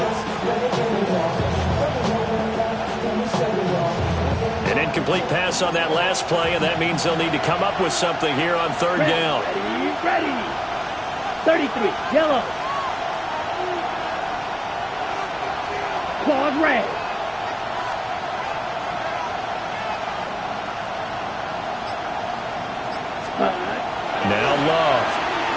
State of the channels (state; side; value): identical; both; correlation 1.00